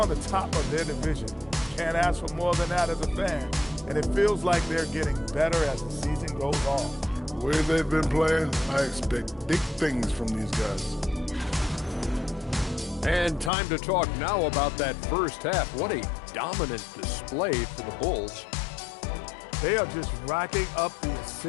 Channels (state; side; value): drops out; right; at 13.5 s